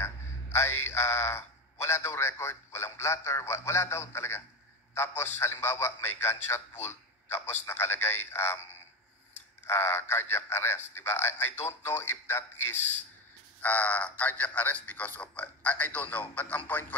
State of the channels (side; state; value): both; normal; correlation 0.19